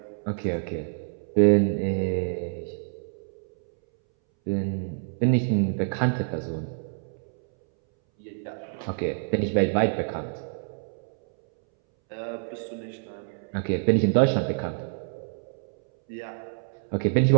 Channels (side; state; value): left; silent; 60 dB below the other